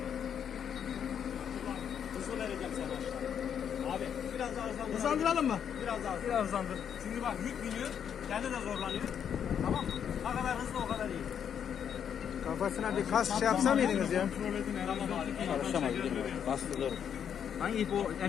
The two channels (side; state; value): right; quieter; 8.4 dB